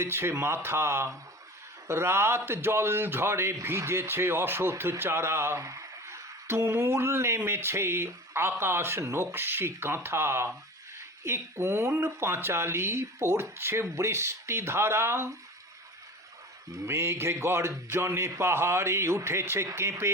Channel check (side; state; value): both; normal; correlation 0.35